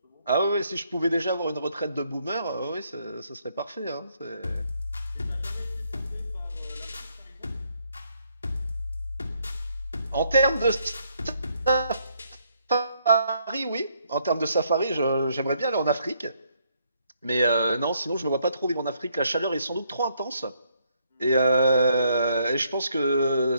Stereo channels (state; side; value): inverted; both; correlation -0.72